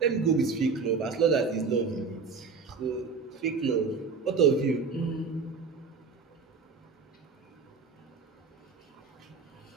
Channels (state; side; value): quieter; left; 5.0 dB